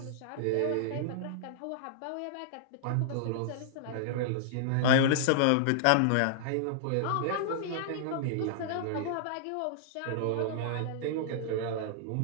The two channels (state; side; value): different; both; correlation -0.01